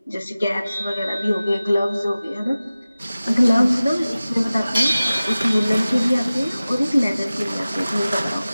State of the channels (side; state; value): both; inverted; correlation -0.97